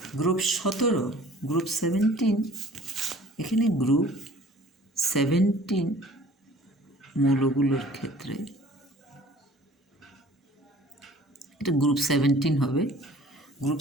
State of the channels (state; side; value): normal; both; correlation 0.50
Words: গ্রুপ 17, গ্রুপ 17, এখানে গ্রুপ 17 মৌলগুলোর ক্ষেত্রে এটা গ্রুপ 17 হবে।